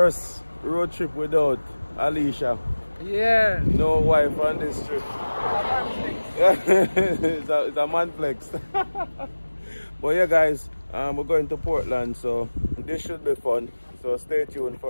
road trip without Alicia. Yeah. No wife on this trip. It's a man flex. But yeah guys, we're going to Portland, so this should be fun. So stay tuned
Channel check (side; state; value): both; inverted; correlation -1.00